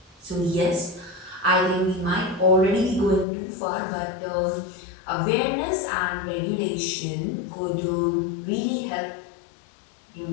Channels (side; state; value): right; drops out; at 3.2 s